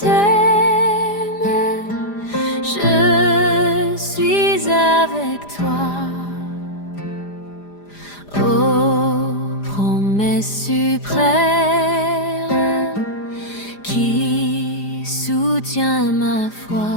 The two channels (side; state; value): right; late; 4.9 ms